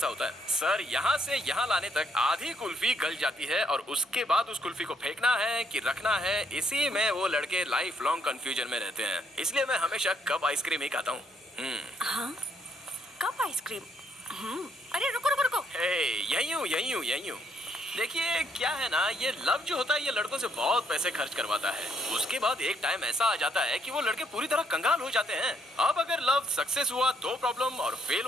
होता है। सर, यहाँ से यहाँ लाने तक आधी कुल्फी गल जाती है और उसके बाद उस कुल्फी को फेंकना है कि रखना है, इसी में वो लड़के लाइफ लॉन्ग कंफ्यूजन में रहते हैं। इसलिए मैं हमेशा कप आइसक्रीम ही खाता हूँ। हाँ, कप आइसक्रीम। अरे रुको रुको रुको। यही हूँ। देखिए क्या है ना, ये लव जो होता है ये लड़कों से बहुत पैसे खर्च करवाता है। उसके बाद एक टाइम ऐसा आ जाता है कि वो लड़के पूरी तरह कंगाल हो जाते हैं। अब अगर लव सक्सेस हुआ तो प्रॉब्लम, और फेल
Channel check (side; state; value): both; normal; correlation 0.71